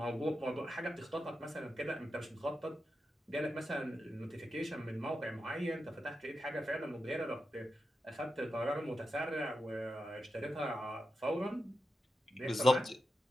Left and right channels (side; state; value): both; normal; correlation 0.88